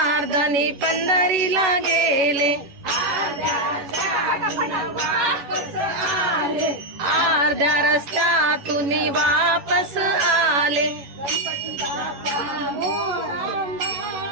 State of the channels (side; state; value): left; late; 11 ms